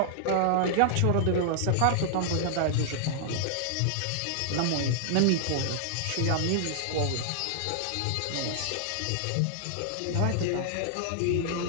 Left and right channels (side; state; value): both; different; correlation -0.01